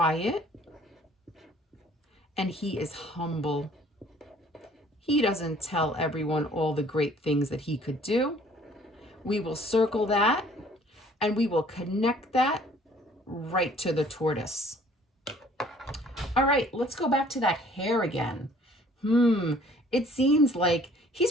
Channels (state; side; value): normal; both; correlation 0.56